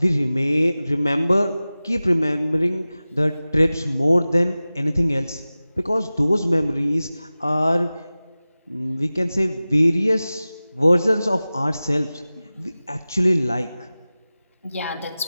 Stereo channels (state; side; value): inverted; both; correlation -0.97